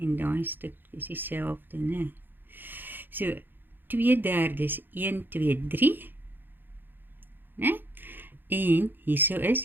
daai stuk is dieselfde, né? So 2/3 1, 2, 3, né? En hierso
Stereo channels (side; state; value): left; late; 0.095 ms